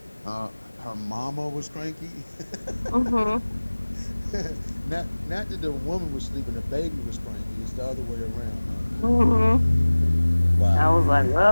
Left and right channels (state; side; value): inverted; both; correlation -1.00